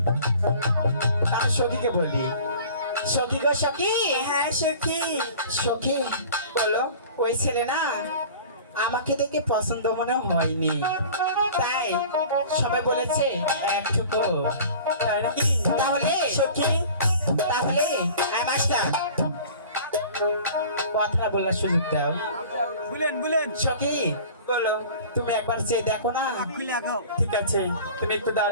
আমি সখীকে বলি সখী গো সখী হ্যাঁ সখী সখী বলো ওই ছেলে না আমাকে দেখে পছন্দ মনে হয়নি তাই সবাই বলেছে একটুকু। তাই নাকি তাহলে সখী তাহলে মাস্টার কথা বলার সুযোগ দাও। বুলেন সখী বলো তুমি একবার চেয়ে দেখো না। ঠিক আছে তুমি একটু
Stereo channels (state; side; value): inverted; both; correlation -0.43